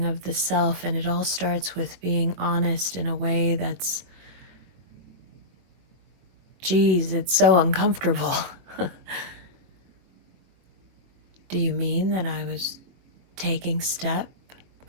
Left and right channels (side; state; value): left; late; 22 ms